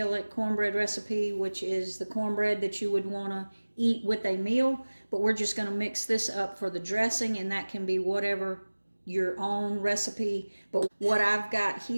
cornbread recipe, which is the cornbread that you would want to eat with a meal. But we're just going to mix this up for the dressing, and that can be whatever your own recipe. But what I've got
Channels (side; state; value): both; inverted; correlation -1.00